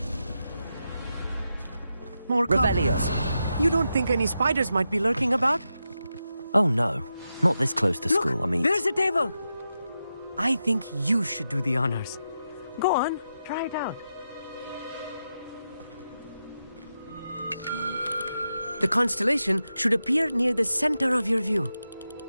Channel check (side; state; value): both; inverted; correlation -0.88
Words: More Revelio. cobwebs. You don't think any spiders might be lurking about? Oh no, not this close to school, I mean... There's a table! I think you should do the honors. Go on, try it out. The constellation should appear near the center of your view.